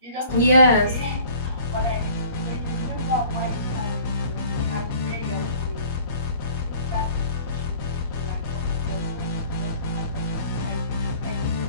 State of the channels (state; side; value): inverted; both; correlation -0.50